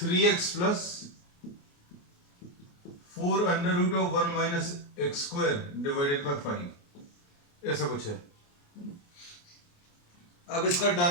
plus 4 under root of 1 minus x square divided by 5, ऐसा कुछ है. अब इसका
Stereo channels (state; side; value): late; right; 28 ms